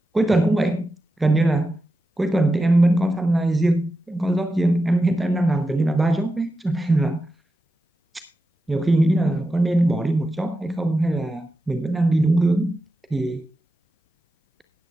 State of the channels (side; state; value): both; normal; correlation 0.91